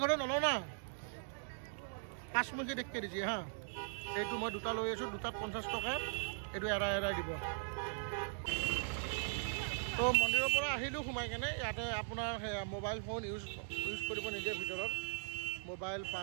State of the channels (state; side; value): silent; left; digital silence